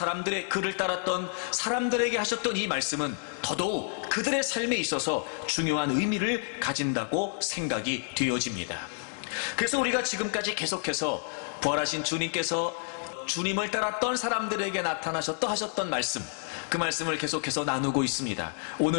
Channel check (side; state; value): right; silent; 57 dB below the other